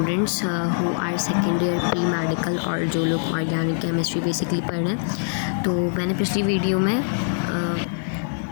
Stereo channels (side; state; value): right; silent; 63 dB below the other